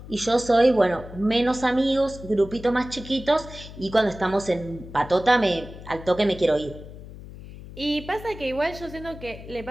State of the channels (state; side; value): noise; left; hum, 15 dB below the sound